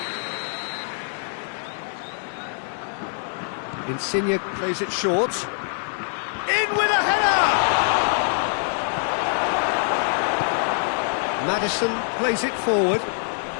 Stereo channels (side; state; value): right; silent; 62 dB below the other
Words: Insigne plays it short. In with a header! Maddison plays it forward.